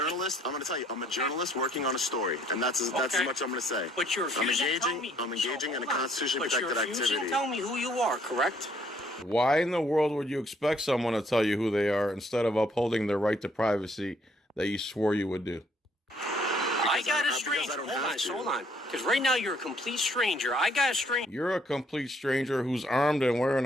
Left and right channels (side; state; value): both; normal; correlation 0.65